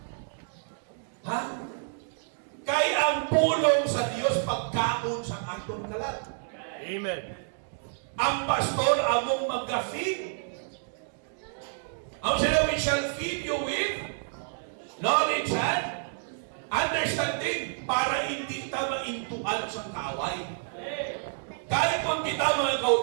Ha? Kay ang pulong sa Diyos pagkaon sa atong kalat. Amen. Ang pastor among mag-feed. Ang sila, we shall feed you with knowledge and Understanding para hindi ta maintuan sa kaway. Kahit kung kita mga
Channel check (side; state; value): left; silent; digital silence